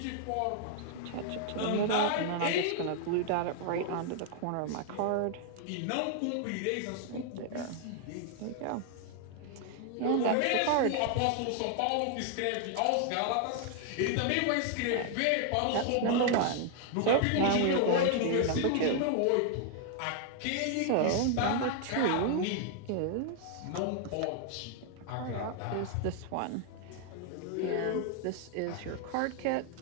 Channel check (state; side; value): different; both; correlation 0.00